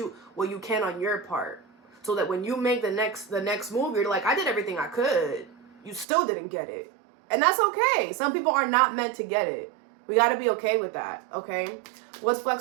can on your part, so that when you make the next move, you're like, I did everything I could. You still didn't get it. And that's okay. Some people are not meant to get it. We got to be okay with that, okay? What's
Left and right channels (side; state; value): left; drops out; at 6.1 s